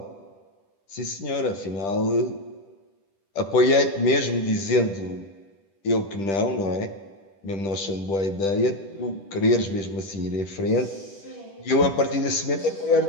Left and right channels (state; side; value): late; right; 10 ms